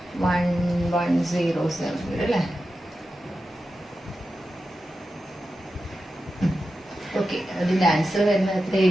1107 അല്ലേ? ഓക്കെ, അതിന്റെ ആൻസർ വരുന്നത്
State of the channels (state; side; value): normal; both; correlation 0.91